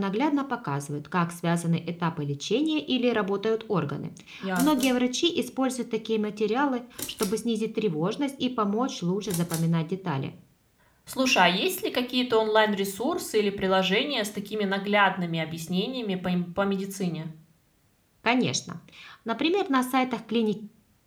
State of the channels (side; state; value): both; identical; correlation 1.00